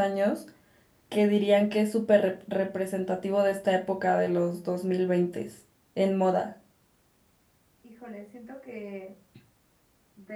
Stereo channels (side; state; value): both; identical; correlation 1.00